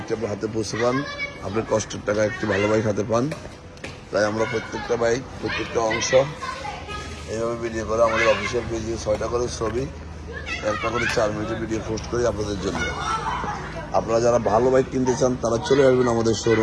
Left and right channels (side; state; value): both; identical; correlation 1.00